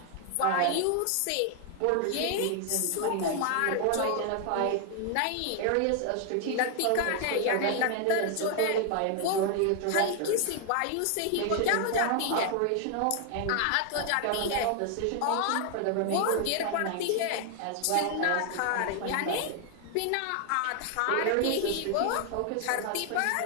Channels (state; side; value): different; both; correlation 0.00